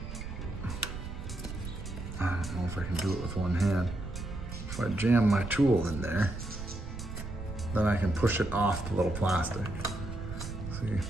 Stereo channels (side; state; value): right; noise; rumble, 8 dB below the sound